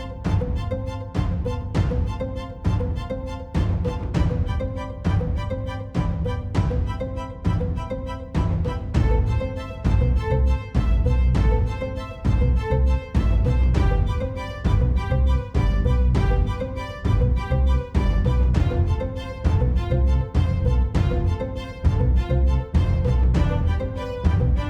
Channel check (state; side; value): identical; both; correlation 1.00